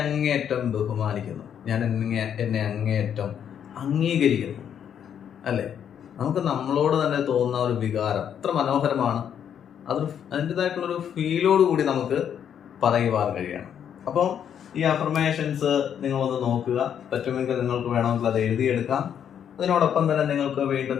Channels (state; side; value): quieter; right; 8.8 dB